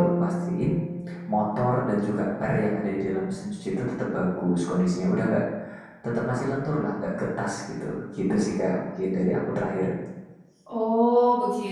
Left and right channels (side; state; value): both; identical; correlation 1.00